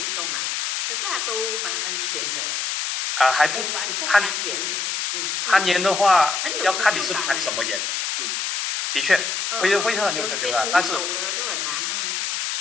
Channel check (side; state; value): left; noise; hiss, 1 dB below the sound